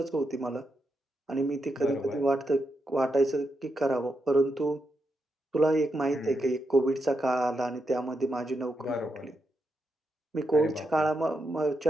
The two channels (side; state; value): both; normal; correlation 0.84